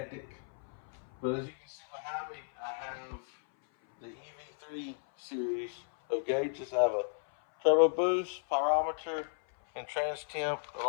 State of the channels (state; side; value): silent; right; 55 dB below the other